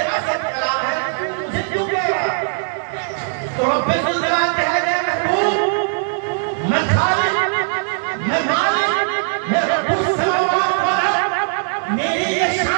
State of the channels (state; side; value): silent; left; digital silence